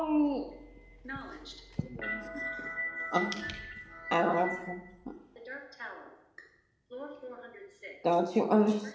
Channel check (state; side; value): identical; both; correlation 1.00